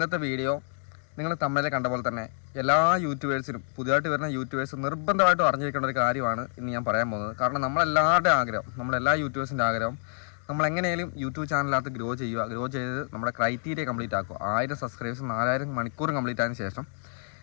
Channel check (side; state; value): right; silent; digital silence